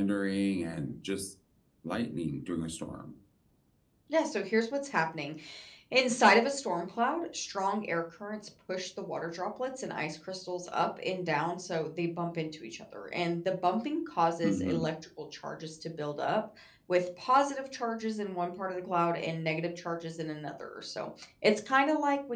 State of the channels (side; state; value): both; identical; correlation 1.00